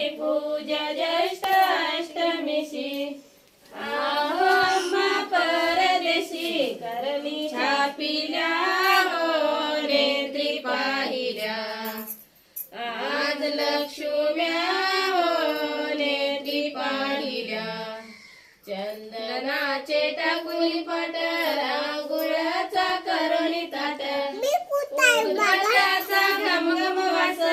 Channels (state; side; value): identical; both; correlation 1.00